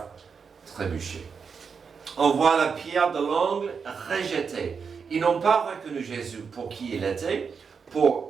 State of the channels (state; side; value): quieter; left; 5.9 dB